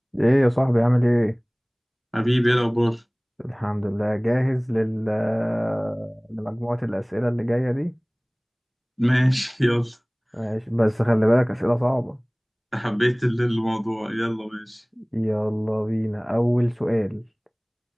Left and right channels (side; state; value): both; identical; correlation 1.00